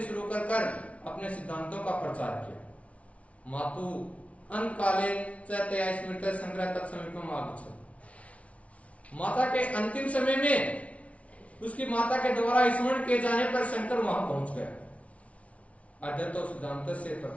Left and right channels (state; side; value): late; right; 0.064 ms